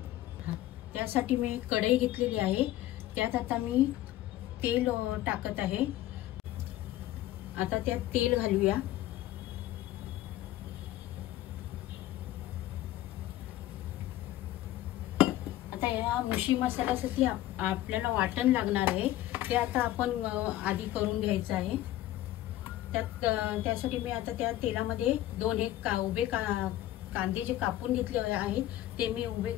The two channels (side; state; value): right; quieter; 14.4 dB